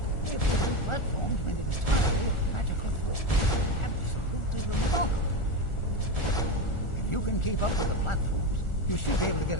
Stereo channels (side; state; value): right; late; 1.4 ms